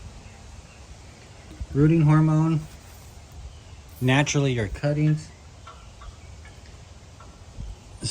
rooting hormone, naturally your cuttings,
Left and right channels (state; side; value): identical; both; correlation 1.00